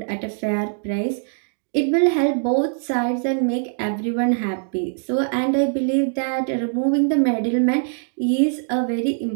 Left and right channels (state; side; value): silent; left; digital silence